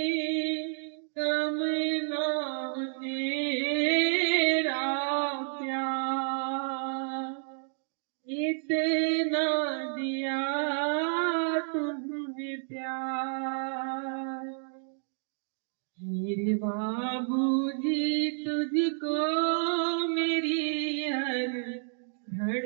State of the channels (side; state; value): left; silent; digital silence